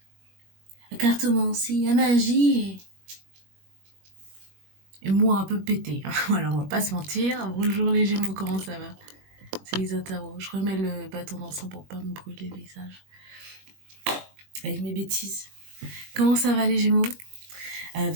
la cartomancie, la magie et moi un peu pété. Voilà, on va pas se mentir. Bonjour les Gémeaux, comment ça va? C'est Elisa Tarot. Je remets le bâton d'encens pour pas me brûler le visage avec mes bêtises. Comment ça va les Gémeaux?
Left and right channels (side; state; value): left; late; 21 ms